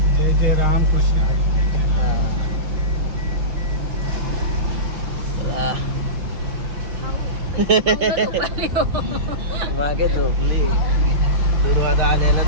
जय जय रामकृष्ण हरी. मागे झोपली दुर्वादा आल्याला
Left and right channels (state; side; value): late; left; 5.8 ms